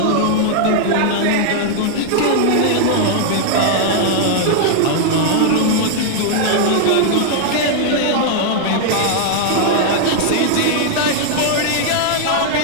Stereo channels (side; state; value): both; different; correlation 0.00